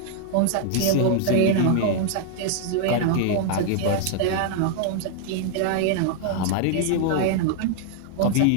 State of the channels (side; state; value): both; different; correlation 0.00